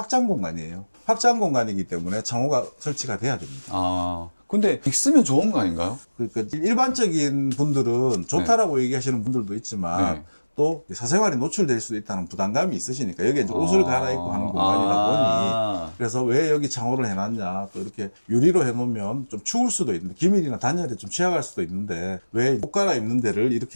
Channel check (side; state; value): both; inverted; correlation -1.00